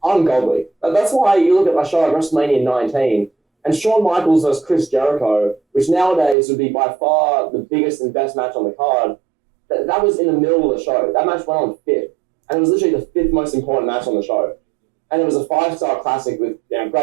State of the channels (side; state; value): left; drops out; at 6.4 s